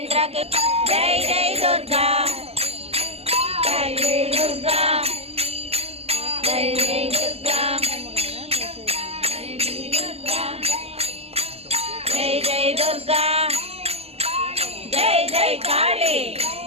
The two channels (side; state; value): left; late; 0.29 ms